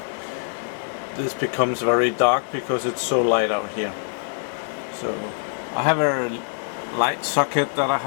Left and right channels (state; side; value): silent; right; digital silence